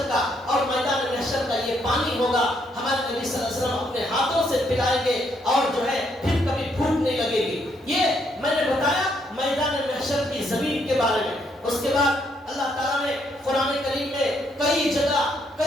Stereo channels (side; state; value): both; normal; correlation 0.73